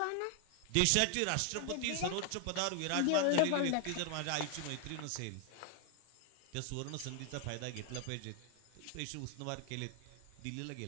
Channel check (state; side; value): different; both; correlation 0.00